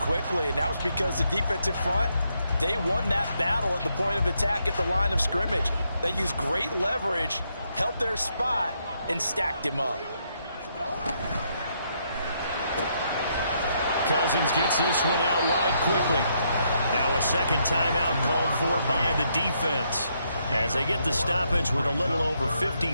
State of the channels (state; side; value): inverted; both; correlation -0.76